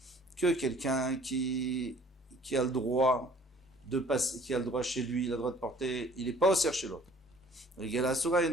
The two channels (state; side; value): normal; both; correlation 0.54